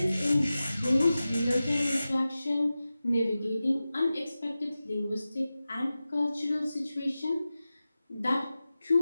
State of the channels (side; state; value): both; inverted; correlation -0.95